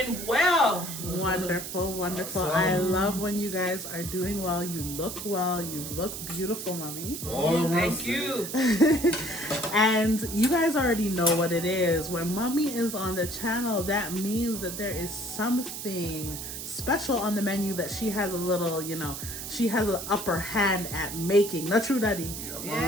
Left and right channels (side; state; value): right; noise; hiss, 7 dB below the sound